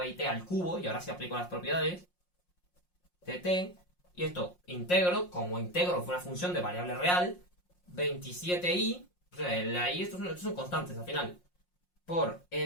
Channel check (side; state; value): right; late; 5.6 ms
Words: a it al cubo, y ahora sí aplico las propiedades de t. Y esto integro, como integro fue una función de variable real, 27i, o sea, la i, estos son constantes al final, por e